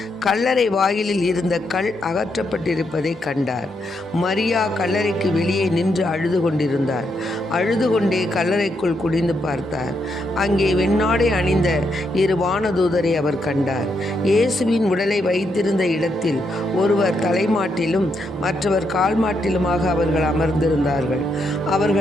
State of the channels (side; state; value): both; normal; correlation 0.79